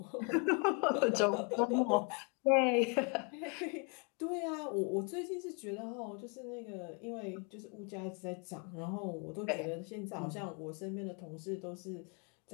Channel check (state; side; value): quieter; right; 34.7 dB